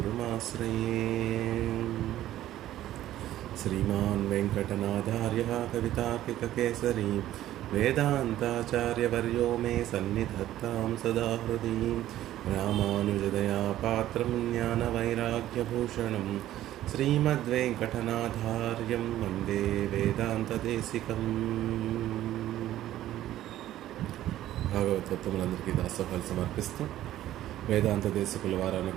श्रीमान् वेङ्कटनाथार्यः कवितार्किककेसरी वेदान्ताचार्यवर्यो मे सन्निधत्तां सदा हृदि। रामानुजदयापात्रं ज्ञानवैराग्यभूषणं श्रीमद्वेङ्कटनाथार्यं वन्दे వేదాంతదేశికం। భాగవతోత్తములందరికీ దాసోహాలు సమర్పిస్తూ వేదాంత దేశికుల వారు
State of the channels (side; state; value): left; quieter; 13.5 dB